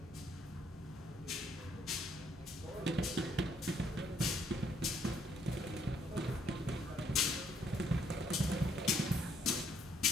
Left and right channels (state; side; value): normal; both; correlation 0.69